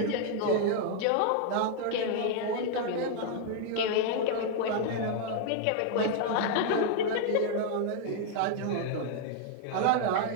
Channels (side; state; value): both; different; correlation 0.00